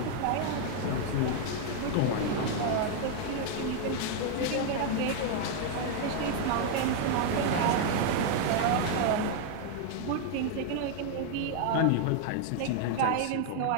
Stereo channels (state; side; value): different; both; correlation 0.00